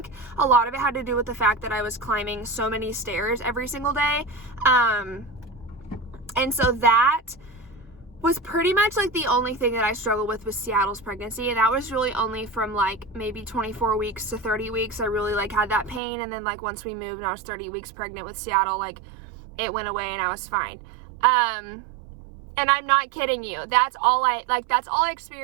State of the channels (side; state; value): left; drops out; at 16.0 s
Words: a lot of it had to do with the fact that I was climbing so many stairs every single day. And so that was pretty much like the only thing that I struggled with Seattle's pregnancy. And that was really only from like maybe 24 weeks to 30 weeks. I really like had that pain. And then like once we moved and I was 30 weeks pregnant with Seattle, like it went away and I was fine. And I'm not kidding you. That's all I